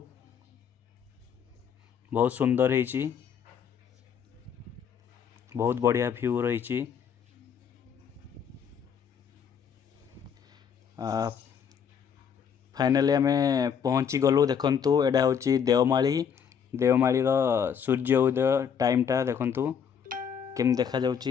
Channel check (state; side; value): quieter; right; 7.5 dB